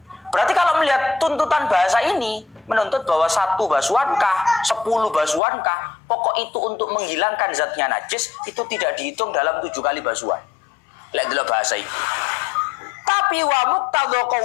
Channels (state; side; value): drops out; right; at 5.4 s